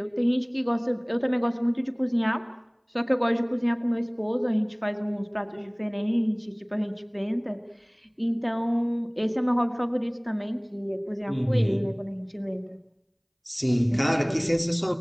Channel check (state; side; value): identical; both; correlation 1.00